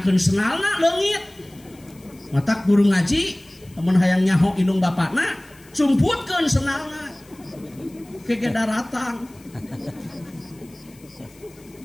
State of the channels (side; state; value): left; noise; hiss, 26 dB below the sound